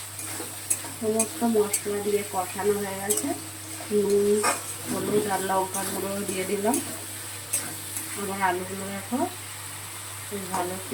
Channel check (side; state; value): both; identical; correlation 1.00